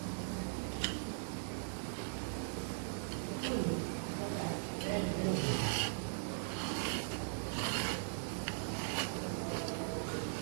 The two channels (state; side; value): silent; left; digital silence